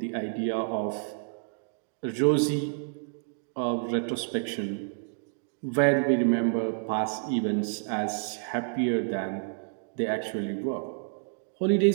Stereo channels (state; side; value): silent; left; digital silence